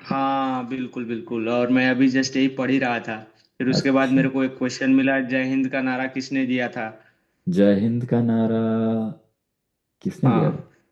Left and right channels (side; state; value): both; identical; correlation 1.00